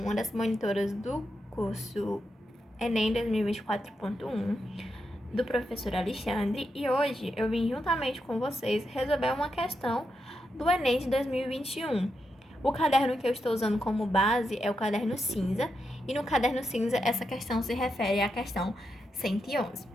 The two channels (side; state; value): both; normal; correlation 0.85